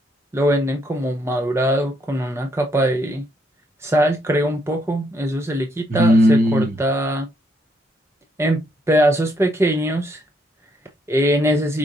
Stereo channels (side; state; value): both; normal; correlation 0.73